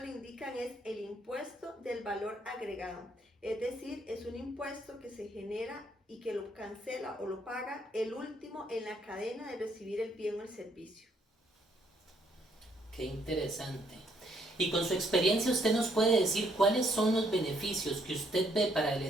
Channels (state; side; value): normal; both; correlation 0.69